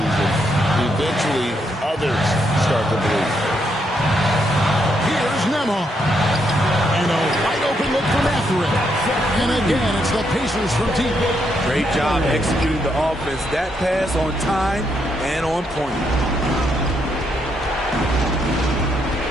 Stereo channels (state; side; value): normal; both; correlation 0.77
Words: and eventually others start to believe. Here's Nembhard. And a wide open look for Mathurin. And again, it's the Pacers from deep. Great job executing the offense. That pass on time and on point.